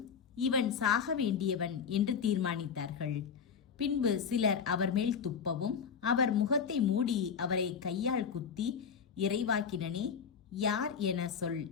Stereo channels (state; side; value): quieter; right; 6.7 dB